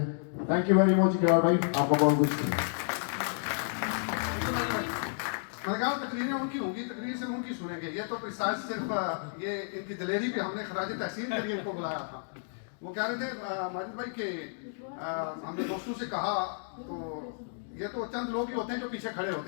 تھینک یو ویری مچ اقرار بھائی، آپ کو بہت کچھ شکریہ. تقریریں ان کی ہوں گی، تقریر سے ان کی سنیں گے. یہ تو پریسائز صرف یہ ان کی دلیری پہ ہم نے خراج تحسین کے لیے ان کو بلایا تھا. وہ کہہ رہے تھے ماجد بھائی کہ ہم نے دوستوں سے کہا، تو یہ تو چند لوگ ہی ہوتے ہیں جو پیچھے کھڑے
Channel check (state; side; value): silent; right; digital silence